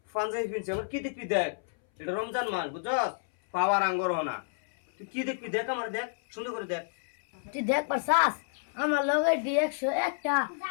পাঞ্জাবি ফিনছি আমার কি দেখবি দেখ এটা রমজান মাস বুঝছস পাওয়ার আঙ্গর হনা তুই কি দেখবি দেখ আমার দেখ সুন্দর করে দেখ তুই দেখ পারছাস আমার লগে D101টা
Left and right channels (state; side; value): silent; right; 58 dB below the other